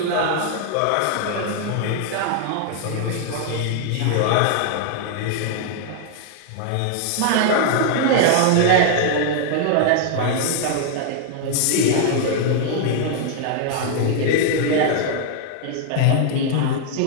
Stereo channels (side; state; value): both; different; correlation -0.01